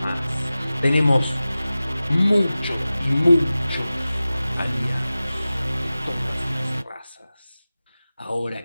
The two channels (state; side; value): inverted; both; correlation -0.96